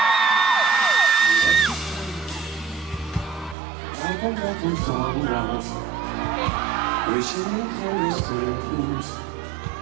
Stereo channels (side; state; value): left; drops out; at 3.6 s